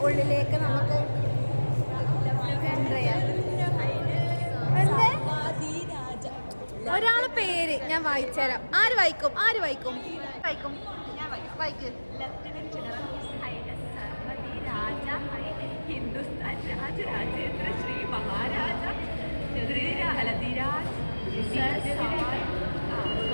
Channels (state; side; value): inverted; both; correlation -1.00